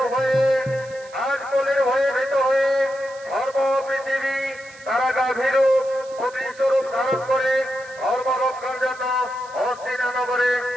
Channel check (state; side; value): noise; right; hiss, 23 dB below the sound